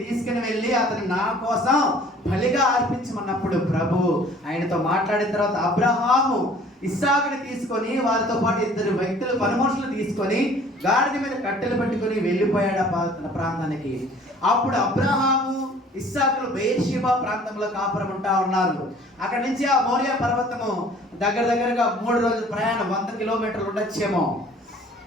తీసుకుని వెళ్ళి అతను నా కోసం బలిగా అర్పించమన్నప్పుడు ప్రభు ఆయనతో మాట్లాడిన తర్వాత అబ్రహాము ఇస్సాకుని తీసుకొని వారితో పాటు ఇద్దరు వ్యక్తులు, పనిమనుషులు తీసుకొని గాడిద మీద కట్టెలు పెట్టుకొని వెళ్ళిపోయాడు ఆ ప్రాంతానికి. అప్పుడు అబ్రహాము ఇస్సాకులు బెయేర్షెబా ప్రాంతంలో కాపురం ఉంటా ఉన్నారు. అక్కడి నుంచి ఆ మోరియా పర్వతము దగ్గరగా 3 రోజుల ప్రయాణం, 100 కిలోమీటర్లు ఉండొచ్చేమో.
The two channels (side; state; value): both; normal; correlation 0.52